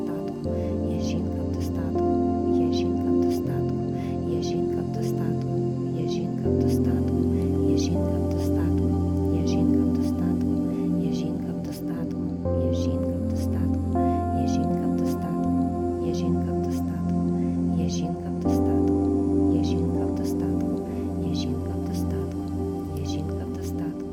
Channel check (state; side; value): identical; both; correlation 1.00